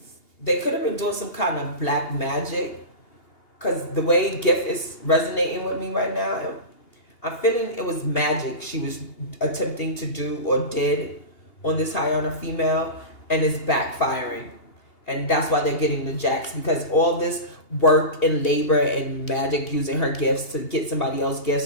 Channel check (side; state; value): right; late; 2.8 ms